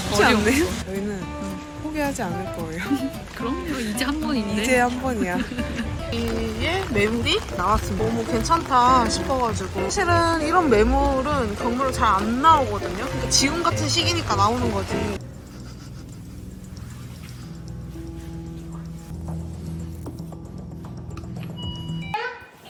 쉽지 않네요. 저희는 포기하지 않을 거예요. 그럼요. 이제 한 번인데. 이제 한 번이야. 이게 매물이 나왔습니다. 너무 괜찮다 싶어가지고. 사실은 이런 매물은 경매로 잘 안 나오거든요. 그러니까 지금 같은 시기니까 나오는 거지.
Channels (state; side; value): identical; both; correlation 1.00